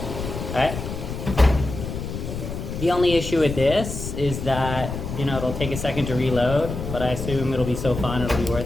Alright. The only issue with this is that, you know, it'll take a second to reload, but I assume it'll be so fun it'll be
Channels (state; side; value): noise; left; rumble, 7 dB below the sound